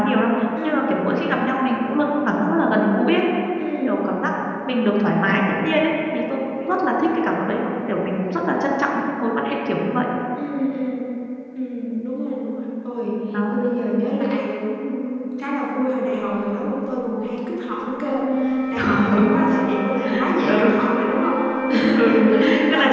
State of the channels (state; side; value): identical; both; correlation 1.00